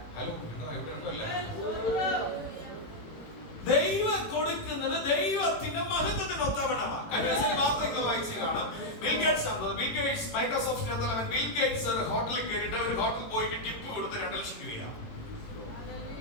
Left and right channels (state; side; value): late; right; 18 ms